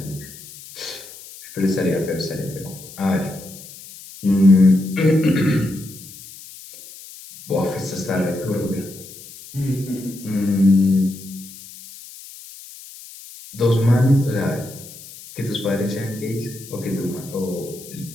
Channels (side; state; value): left; noise; hiss, 17 dB below the sound